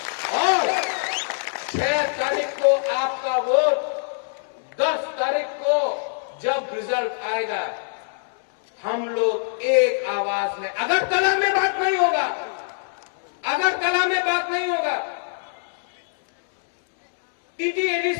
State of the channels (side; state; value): right; silent; digital silence